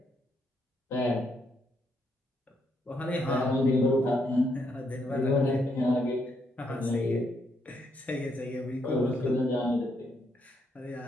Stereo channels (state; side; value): normal; both; correlation 0.76